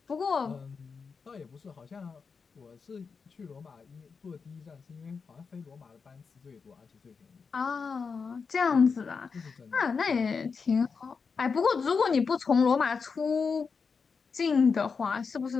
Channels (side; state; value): right; quieter; 5.3 dB